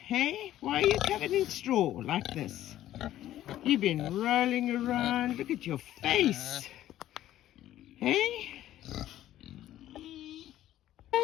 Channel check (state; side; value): quieter; right; 13.2 dB